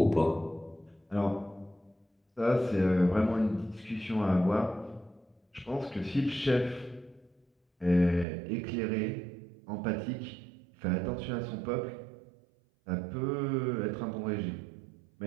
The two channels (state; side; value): drops out; left; at 8.2 s